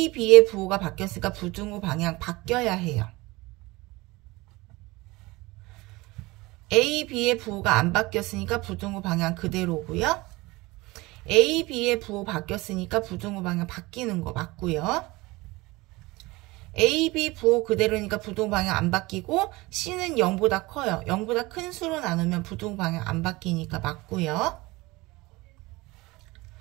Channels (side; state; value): left; quieter; 21.7 dB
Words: B의 부호가 바뀌었으니까 부등호 방향 바뀌어야 해요. A, B의 부호가 안 바뀌었으니까 부등호 방향 그대로고요. A, B의 부호 바뀌었으니까 부등호 방향 바뀌는 거 맞고요. A, B 부호 그대로니까 부등호 방향 안 바뀌고 C는 0보다 커요. 0보다 큰 수로 나누면 부등호 방향 안 바뀌니까 맞고요.